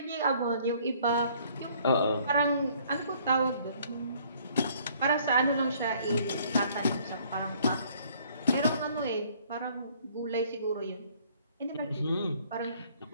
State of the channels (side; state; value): both; inverted; correlation -0.60